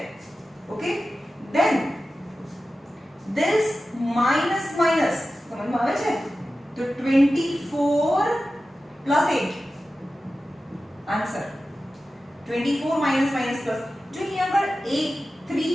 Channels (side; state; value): both; normal; correlation 0.94